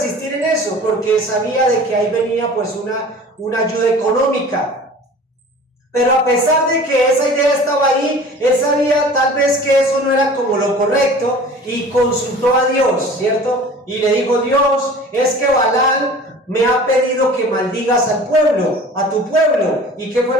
en eso porque sabía de que ahí venía pues una ayuda económica. Pero a pesar de que esa idea estaba ahí, él sabía tal vez que eso no era como lo correcto y consultó a Dios, ¿cierto? Y le dijo, Dios, es que Balán me ha pedido que maldigas al pueblo, a tu pueblo. ¿Y qué fue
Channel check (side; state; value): both; normal; correlation 0.43